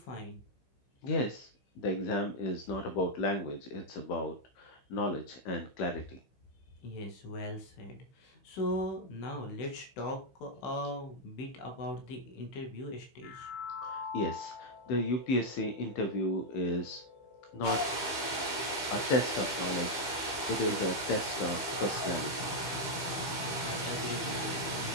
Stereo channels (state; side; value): late; right; 15 ms